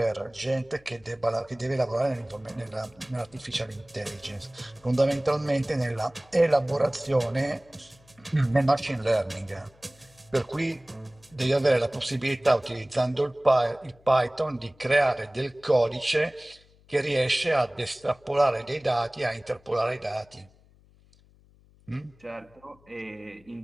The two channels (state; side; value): noise; left; hum, 29 dB below the sound